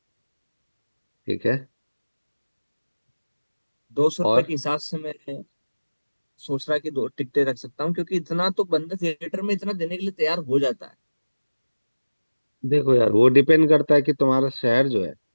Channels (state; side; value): inverted; both; correlation -1.00